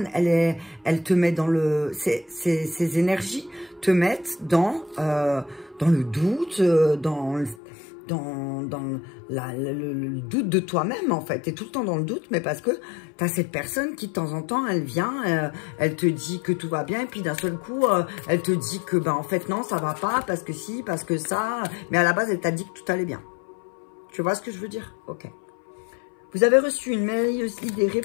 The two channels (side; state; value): right; drops out; at 7.6 s